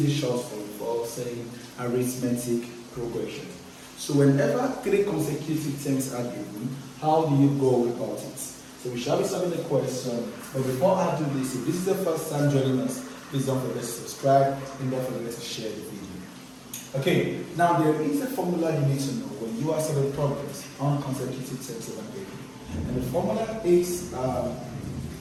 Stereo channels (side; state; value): both; identical; correlation 1.00